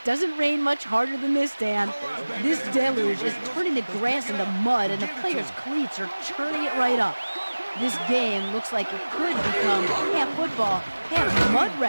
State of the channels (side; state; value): both; inverted; correlation -1.00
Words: doesn't rain much harder than this, Dan. This deluge is turning the grass into mud, and the players' cleats are churning it right up. This game looks like it could become half football, half mud